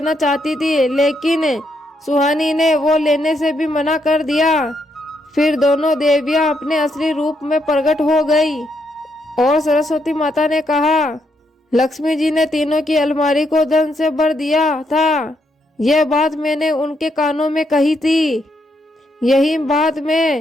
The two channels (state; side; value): normal; both; correlation 0.77